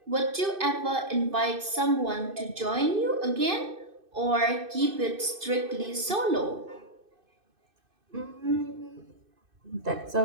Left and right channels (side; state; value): left; late; 2.6 ms